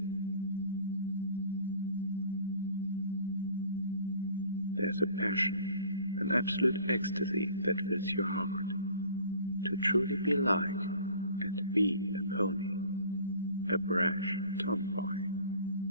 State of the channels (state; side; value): inverted; both; correlation -0.49